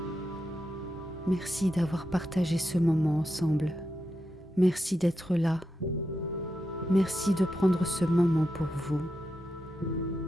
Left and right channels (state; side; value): normal; both; correlation 0.87